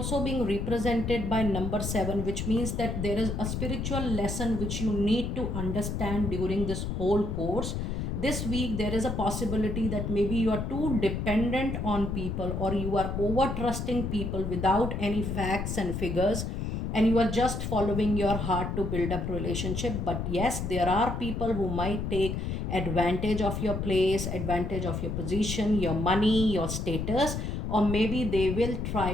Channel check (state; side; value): noise; left; rumble, 3 dB below the sound